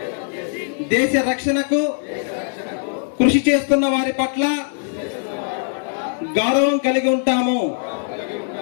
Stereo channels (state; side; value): silent; right; 65 dB below the other